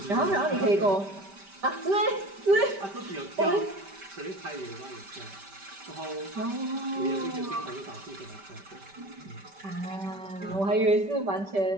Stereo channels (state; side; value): late; left; 5.1 ms